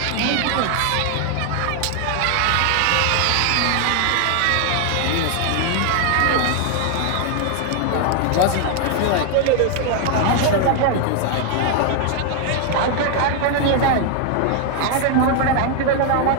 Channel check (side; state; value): both; different; correlation 0.00